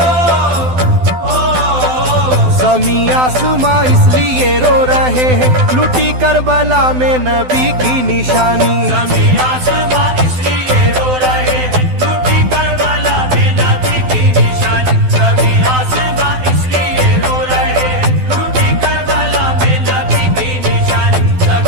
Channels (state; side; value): late; left; 12 ms